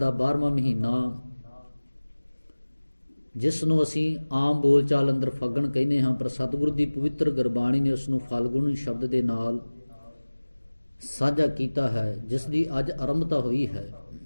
12ਵਾਂ ਮਹੀਨਾ, ਜਿਸ ਨੂੰ ਅਸੀਂ ਆਮ ਬੋਲਚਾਲ ਅੰਦਰ ਫੱਗਣ ਕਹਿੰਦੇ ਹਾਂ, ਪਰ ਸਤਿਗੁਰੂ ਦੀ ਪਵਿੱਤਰ ਗੁਰਬਾਣੀ ਨੇ ਉਸ ਨੂੰ ਫਾਲਗੁਨ ਸ਼ਬਦ ਦੇ ਨਾਲ ਸਾਂਝਾ ਕੀਤਾ ਹੈ, ਜਿਸ ਦੀ ਅੱਜ ਆਰੰਭਤਾ ਹੋਈ ਹੈ।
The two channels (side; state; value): both; inverted; correlation -1.00